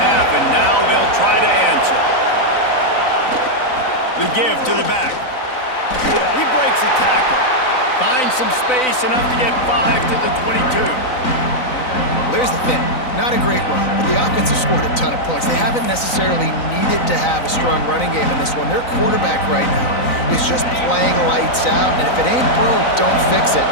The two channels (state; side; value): late; right; 3.9 ms